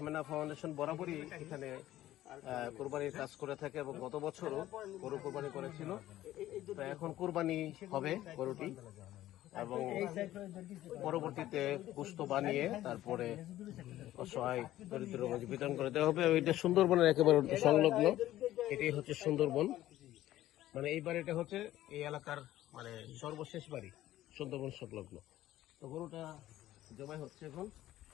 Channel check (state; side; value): quieter; right; 14.3 dB